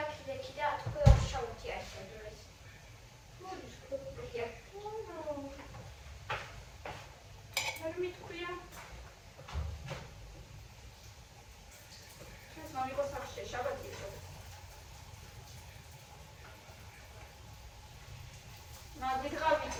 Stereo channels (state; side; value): identical; both; correlation 1.00